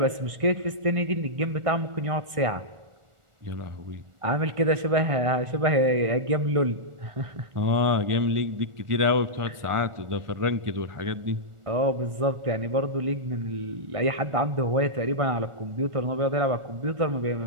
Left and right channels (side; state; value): left; late; 1.4 ms